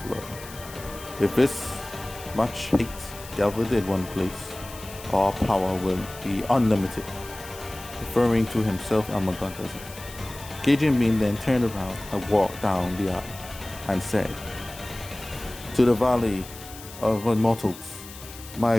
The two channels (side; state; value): left; noise; hiss, 16 dB below the sound